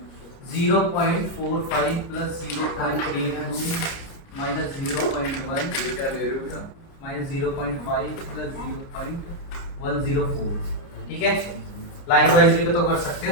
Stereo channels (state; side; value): late; right; 29 ms